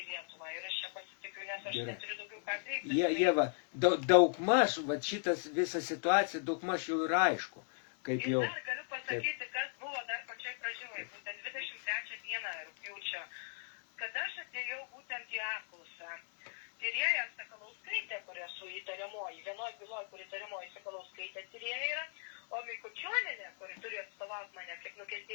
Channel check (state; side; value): silent; right; digital silence